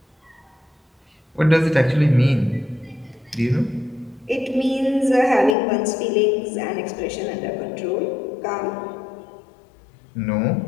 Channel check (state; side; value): drops out; right; at 5.6 s